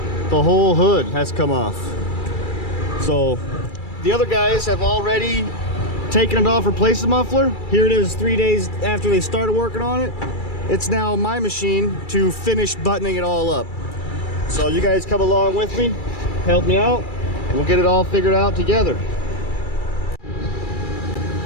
The whole hood has come off. So the other guys have already taken it off, replaced the muffler. Here it is 3 days after they started working on it. It's now my machine to finish buttoning it all up. So you guys come along with me, help me out, and we'll get it all figured out together.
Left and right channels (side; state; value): right; late; 2.3 ms